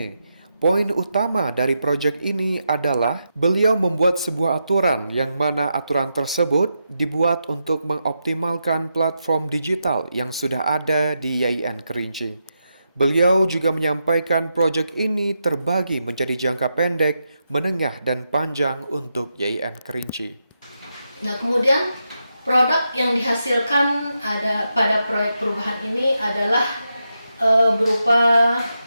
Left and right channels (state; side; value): inverted; both; correlation -0.86